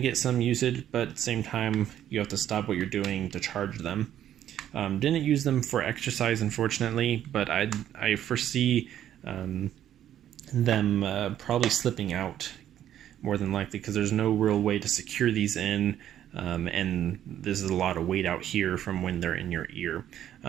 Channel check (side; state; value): left; quieter; 11.1 dB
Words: some usage, but at the same time you have to stop what you're doing to charge them. Didn't use them for exercise, unfortunately, but I foresee them probably slipping out more than likely, because there's no real way to secure these in, and this is a lot of weight out here from when they're in your ear.